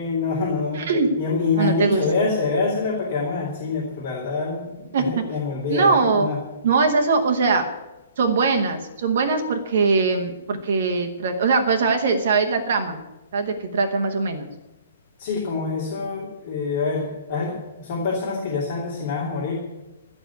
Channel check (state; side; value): inverted; both; correlation -0.51